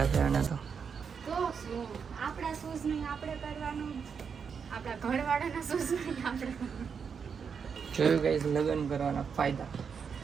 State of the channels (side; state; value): left; quieter; 6.4 dB